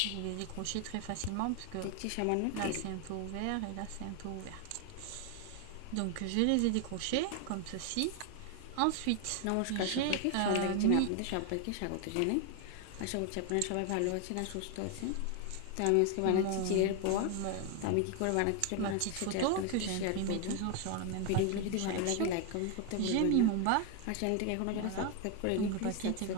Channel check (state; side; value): different; both; correlation 0.01